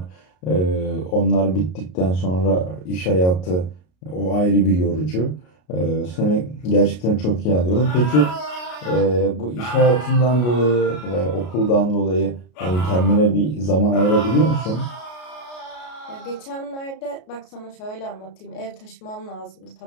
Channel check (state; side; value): late; right; 33 ms